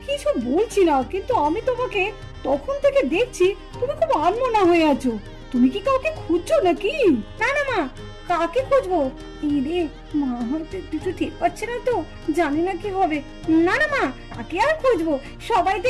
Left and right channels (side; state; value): both; identical; correlation 1.00